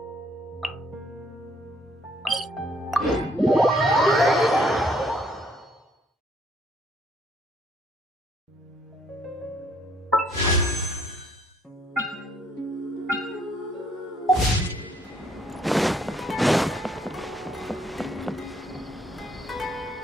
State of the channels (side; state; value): both; normal; correlation 0.66